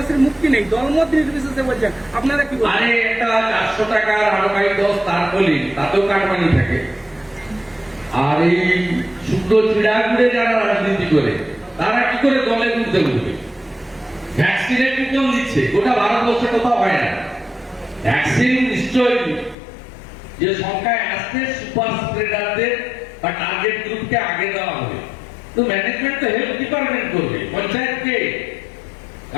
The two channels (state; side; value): drops out; right; at 19.6 s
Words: মুক্তি নেই, দলমত নির্বিশেষে বলছেন, আপনারা কি বলেন? আরে একটা 400 টাকার আরবাই 10 তার বলি, তাতেও কাটমানি থাকে। আর এই শুদ্ধ চিড়া ঘুরে যারা রাজনীতি করে, তারা কি করে দলে ঘুরতে ঘুরবে? ভ্যাকসিনের কুপন দিচ্ছে, গোটা ভারতবর্ষে কোথাও হয় না। ভ্যাকসিন নিশ্চয়ই যে সংখ্যায় আসছে, সুপার স্প্রেডারদের বা টার্গেট গ্রুপকে আগে দেওয়া হবে। তো ম্যানেজমেন্ট তো হেলথ ডিপার্টমেন্ট করবে, পঞ্চায়েতকে।